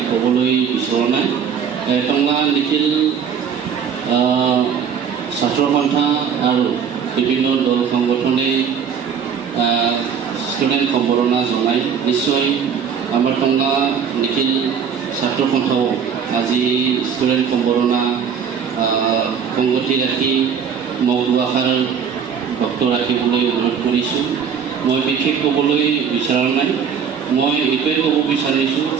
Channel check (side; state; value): left; quieter; 7.1 dB